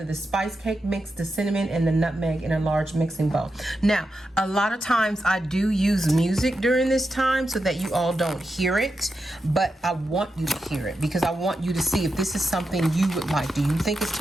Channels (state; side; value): normal; both; correlation 0.88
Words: the spice cake mix, the cinnamon, and the nutmeg in a large mixing bowl. Now, a lot of times I do use music during this time so that you all don't hear it, but I want you to hear it because I want you to see if this is something you would like. Do you think it's